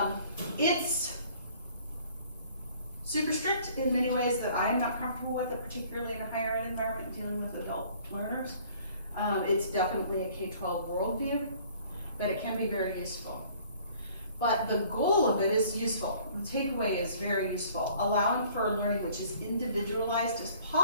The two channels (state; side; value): inverted; both; correlation -0.55